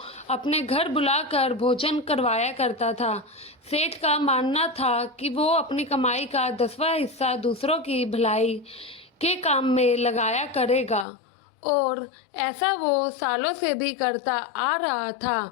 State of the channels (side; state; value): right; drops out; at 11.1 s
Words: अपने घर बुलाकर भोजन करवाया करता था। सेठ का मानना था कि वो अपनी कमाई का 10वां हिस्सा दूसरों की भलाई के काम में लगाया करेगा, और ऐसा वो सालों से भी करता आ रहा